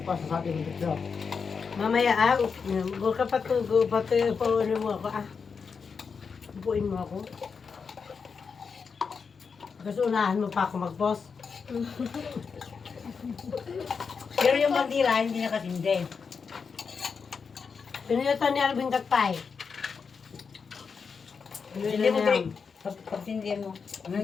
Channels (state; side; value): quieter; right; 5.6 dB